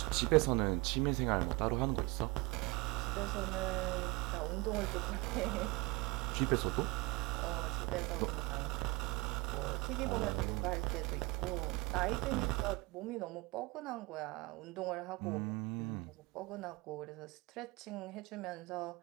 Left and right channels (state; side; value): quieter; left; 23.2 dB